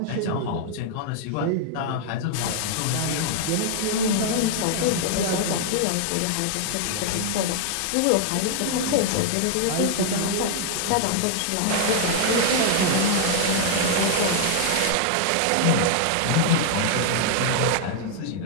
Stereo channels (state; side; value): different; both; correlation 0.00